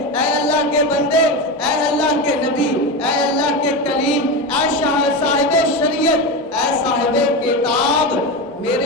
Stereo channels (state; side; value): normal; both; correlation 0.19